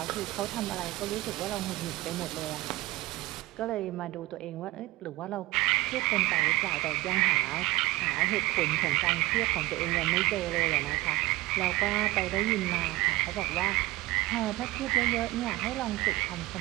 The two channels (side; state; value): left; quieter; 19.2 dB